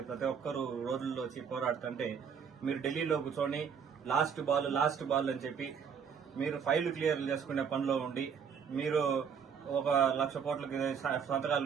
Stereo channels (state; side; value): quieter; left; 6.9 dB